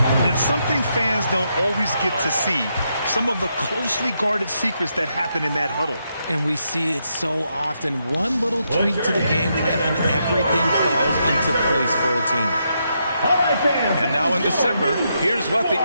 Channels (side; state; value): both; inverted; correlation -0.80